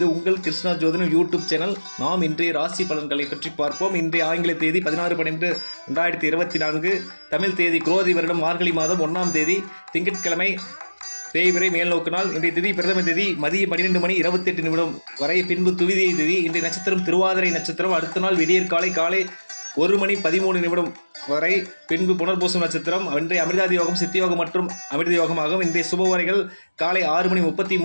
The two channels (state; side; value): inverted; both; correlation -1.00